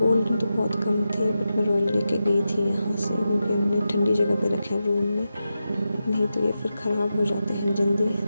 तो बहुत कम थे, बट मैं रॉयल लेके गई थी यहाँ से, क्योंकि हमने ठंडी जगह पे रखे हैं रूम में, नहीं तो ये फिर ख़राब हो जाते हैं जल्दी।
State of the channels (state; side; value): inverted; both; correlation -0.90